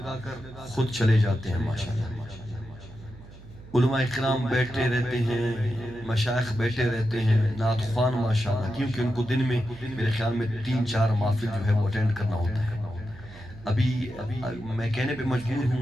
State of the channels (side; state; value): right; noise; hum, 18 dB below the sound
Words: خود چلے جاتے ہیں ماشاءاللہ علماء اکرام بیٹھے رہتے ہیں مشائخ بیٹھے رہتے ہیں نعت خوان ماشاءاللہ کیونکہ ان کو دن میں میرے خیال میں 3-4 محفل جو ہے وہ اٹینڈ کرنا ہوتا ہے ابھی میں کہنے پہ مجبور